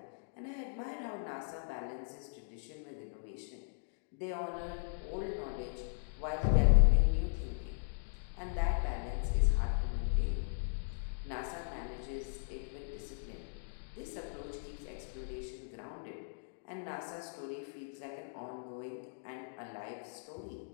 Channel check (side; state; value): right; silent; digital silence